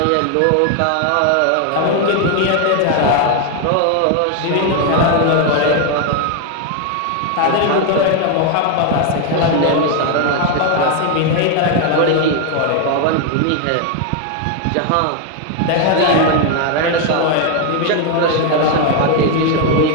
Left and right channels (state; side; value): different; both; correlation 0.01